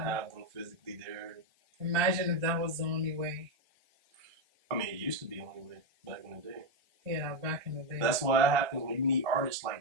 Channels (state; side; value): late; left; 1.3 ms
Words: them physically there. Imagine if that was the only way. I mean, it used to be the only way back in the day. Yeah, back in the day. That's why it happens when you need artists